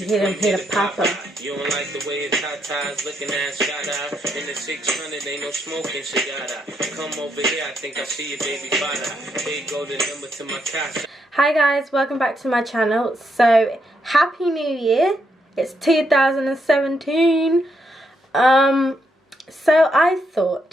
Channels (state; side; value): normal; both; correlation 0.78